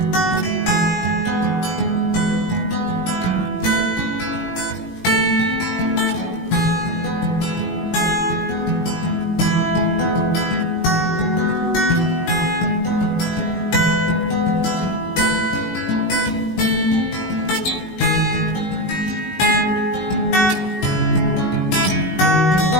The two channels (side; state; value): right; late; 19 ms